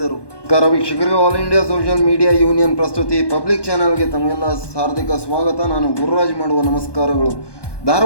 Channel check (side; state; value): right; late; 1.1 ms